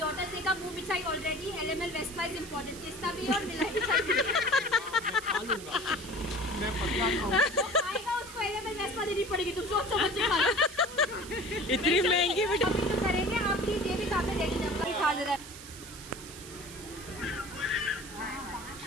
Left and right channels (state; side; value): noise; right; hiss, 14 dB below the sound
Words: डॉटर्स डे का मुंह मिठाई already LML Vespa is important, किस्ता भी और मिलाई मिठाई भी। मैं पतला खाऊं। आएगा उसको एलएमएल वेस्पा देनी पड़ेगी, तुम सोच समझ के खाना। इतनी महंगी मिठाई। अभी तो करेंगे, आप प्लीज ये भी सामने देख लीजिए खा ले रहा है।